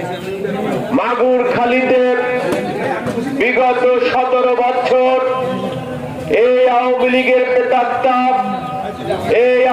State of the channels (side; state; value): both; identical; correlation 1.00